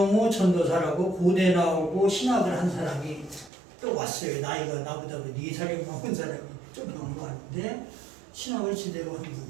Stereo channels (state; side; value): drops out; left; at 3.5 s